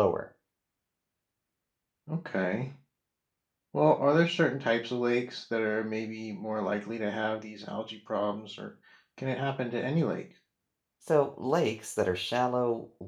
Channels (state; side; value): identical; both; correlation 1.00